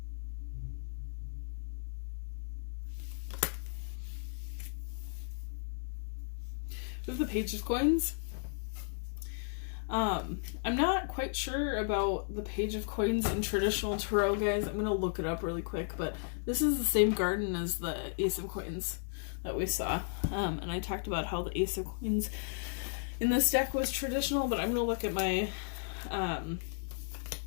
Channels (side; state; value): right; silent; digital silence